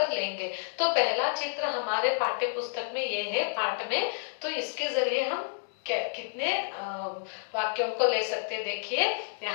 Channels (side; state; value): right; silent; digital silence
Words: लेंगे। तो पहला चित्र हमारे पाठ्य पुस्तक में ये है पाठ में, तो इसके जरिए हम कितने वाक्यों को ले सकते। देखिए,